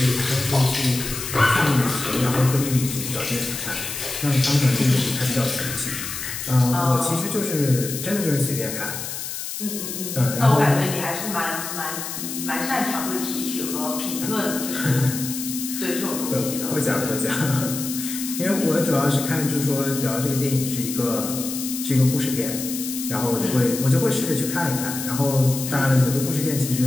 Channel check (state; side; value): noise; left; hiss, 6 dB below the sound